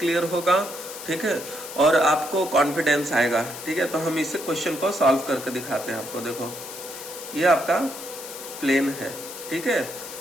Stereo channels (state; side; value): noise; left; hiss, 11 dB below the sound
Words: होगा, ठीक है, और आपको कॉन्फिडेंस आएगा, ठीक है। तो हम इसे क्वेश्चन को सॉल्व करके दिखाते हैं आपको। देखो ये आपका प्लेन है, ठीक है,